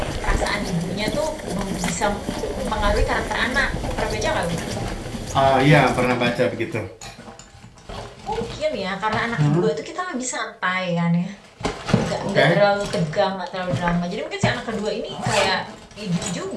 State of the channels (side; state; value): both; identical; correlation 1.00